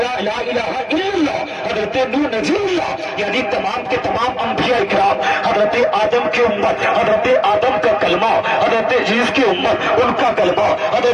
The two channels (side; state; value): both; identical; correlation 1.00